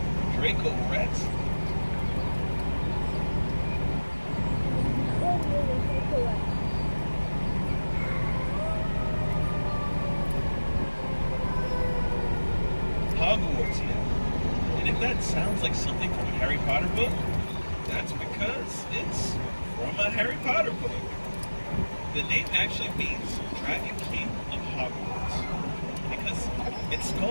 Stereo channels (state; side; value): inverted; both; correlation -1.00